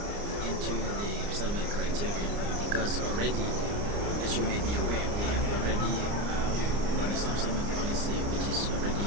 into the resettlement criteria, because already, as you may be aware, we have already the resettlement policy which is already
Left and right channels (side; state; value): left; late; 29 ms